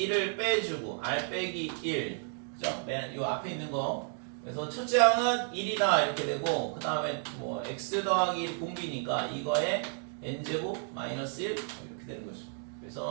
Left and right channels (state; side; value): silent; left; 56 dB below the other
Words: 빼주고 r 빼기 1 그죠? 요 앞에 있는 거. 그래서 첫째 항은 1이다 이렇게 되고 그 다음에 뭐 x 더하기 1 공비니까 이거에 n제곱 마이너스 1 이렇게 되는 거죠.